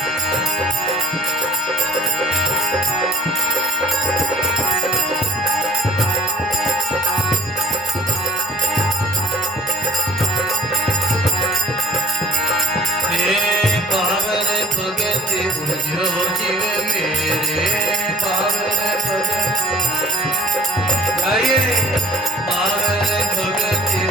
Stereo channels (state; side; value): normal; both; correlation 0.48